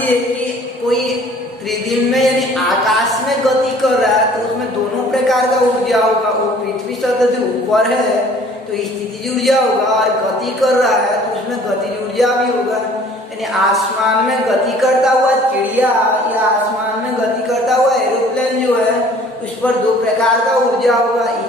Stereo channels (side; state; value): both; normal; correlation 0.52